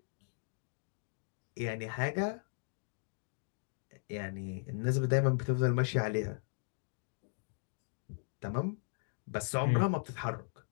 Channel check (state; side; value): silent; right; digital silence